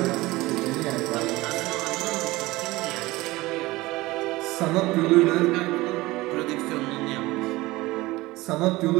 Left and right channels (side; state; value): left; quieter; 19.8 dB